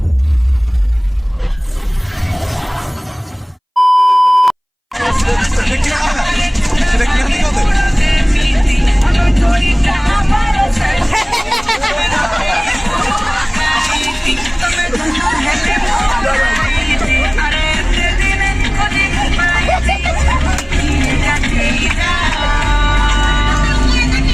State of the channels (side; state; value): both; identical; correlation 1.00